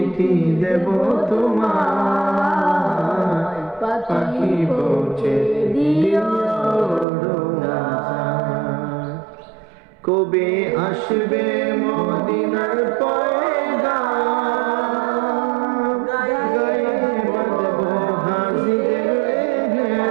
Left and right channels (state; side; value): drops out; left; at 7.1 s